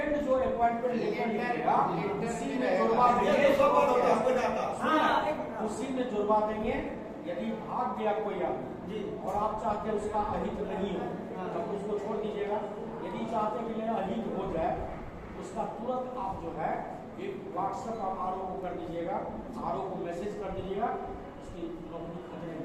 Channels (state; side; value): identical; both; correlation 1.00